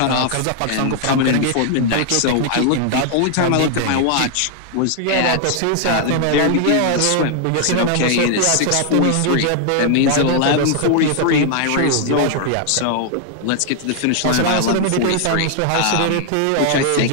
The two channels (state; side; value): different; both; correlation 0.00